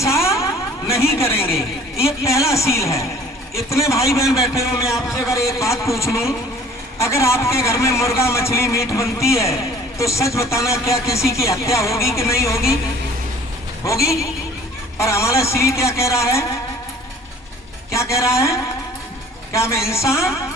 नहीं करेंगे। ये पहला सील है। इतने भाई बहन बैठे हो, मैं आपसे अगर एक बात पूछ लूं, अगर आपके घर में मुर्गा मछली मीट बनती है तो सच बताना, क्या किसी की हत्या होगी कि नहीं होगी? होगी। और हमारा सील क्या कह रहा है? क्या कह रहा है? क्या हम हिंसा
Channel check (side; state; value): both; normal; correlation 0.52